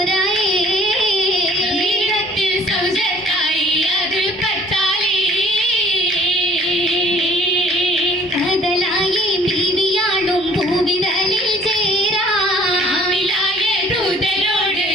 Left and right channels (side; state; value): both; normal; correlation 0.56